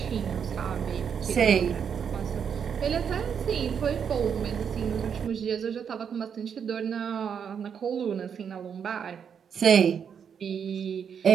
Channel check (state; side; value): quieter; left; 7.4 dB